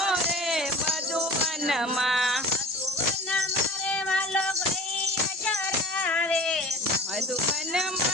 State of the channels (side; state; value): both; normal; correlation 0.40